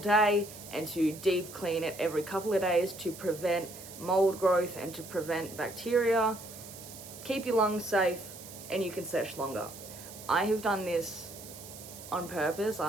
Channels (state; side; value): noise; right; hiss, 15 dB below the sound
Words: and to deep clean it every couple of days to prevent mold growth and to prevent bacteria, keep your lungs safe, and you can sesh longer. I have done this on purpose.